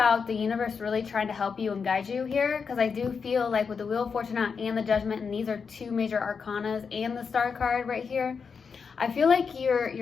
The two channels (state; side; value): quieter; right; 5.7 dB